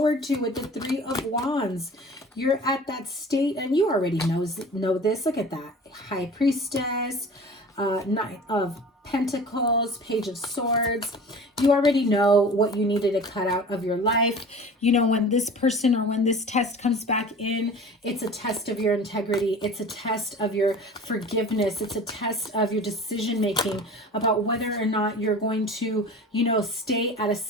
to with the Three of Wands. You're at that state, and you already know this. Look at that. High Priestess, Knight of Pentacles, Page of Swords. You already know what you needed to cut out of your life. You know, when this person or when this test comes back in, it's a test of your integrity. It's a test of your forgiveness. It's a test of your decision making about whether or not you're going to, you know, stay at a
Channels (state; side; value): normal; both; correlation 0.40